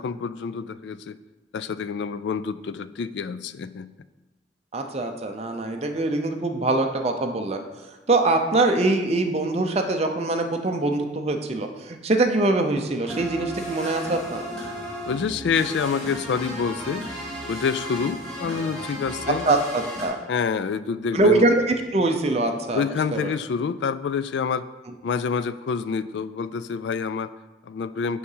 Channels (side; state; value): both; normal; correlation 0.32